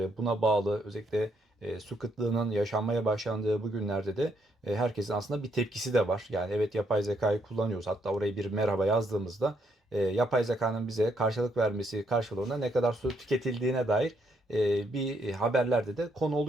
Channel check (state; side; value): normal; both; correlation 0.74